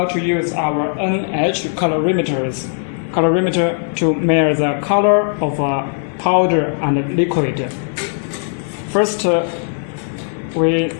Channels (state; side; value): silent; right; 64 dB below the other